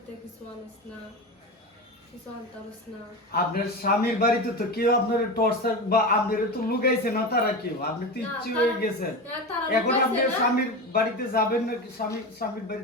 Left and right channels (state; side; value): normal; both; correlation 0.23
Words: কিছু আনস না, কিছু আনতারস না। আপনার স্বামীর বাড়িতে তো কেউ আপনার টর্চার বা আপনার তো লুকাইছে না, তারা কেউ? আপনি তো ইচ্ছে হয়ে গেছেন। এখন আপনি স্বামীর বাড়িতে যাবেন না? স্বামীর